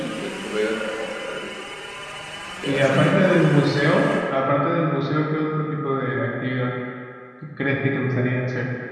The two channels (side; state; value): both; identical; correlation 1.00